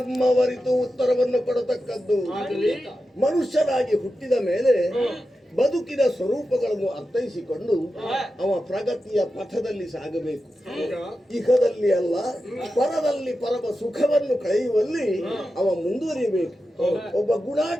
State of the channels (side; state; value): both; normal; correlation 0.91